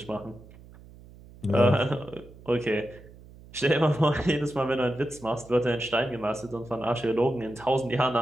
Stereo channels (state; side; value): noise; right; hum, 21 dB below the sound